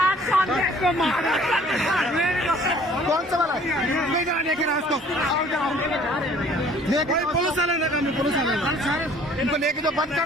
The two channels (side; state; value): both; normal; correlation 0.54